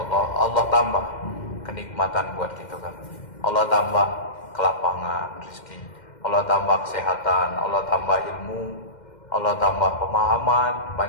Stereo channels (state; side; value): late; right; 2.1 ms